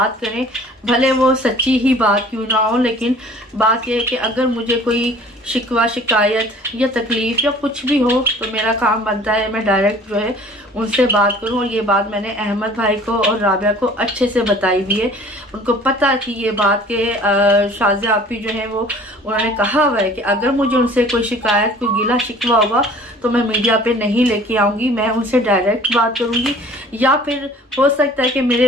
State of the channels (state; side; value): normal; both; correlation 0.49